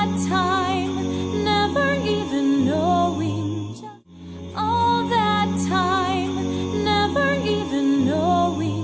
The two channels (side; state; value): both; identical; correlation 1.00